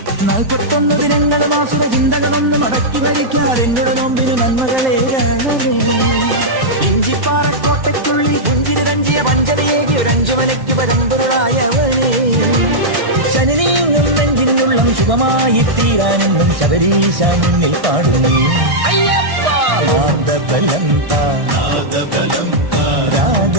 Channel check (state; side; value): late; left; 1.1 ms